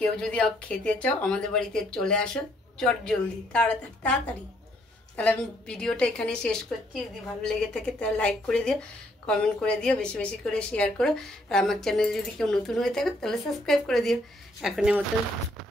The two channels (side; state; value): both; normal; correlation 0.69